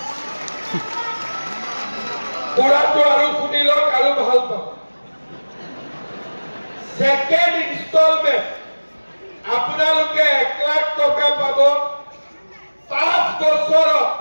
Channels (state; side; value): inverted; both; correlation -1.00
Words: পুৰাটো আৰু শুনিলক আৰু ভাল পাব সেকেন্ড ইনষ্টলমেন্ট আপোনালোকে 1 লাখ টকা পাব 5 বছৰত